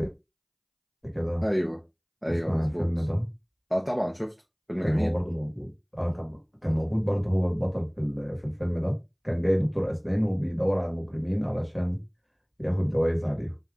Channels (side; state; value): both; identical; correlation 1.00